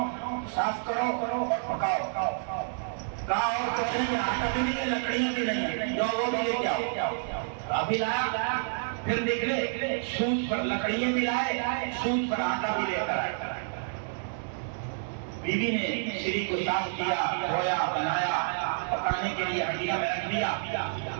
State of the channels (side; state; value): left; silent; digital silence